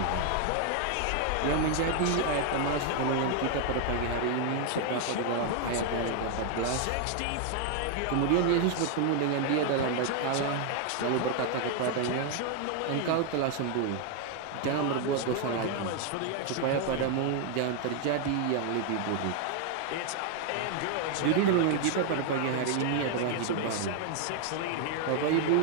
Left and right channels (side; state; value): both; different; correlation 0.00